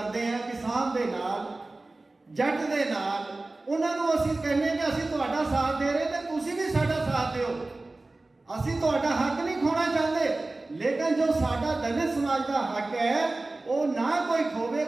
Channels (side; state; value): left; quieter; 3.0 dB